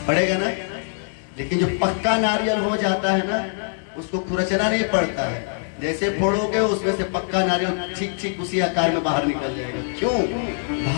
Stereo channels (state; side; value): silent; right; 63 dB below the other